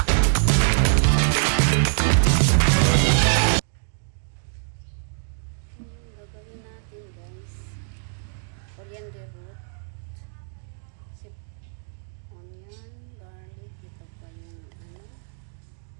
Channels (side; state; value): left; silent; digital silence